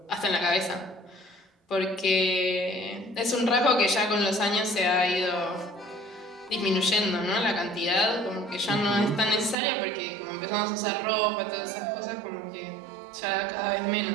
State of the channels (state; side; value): drops out; left; at 9.6 s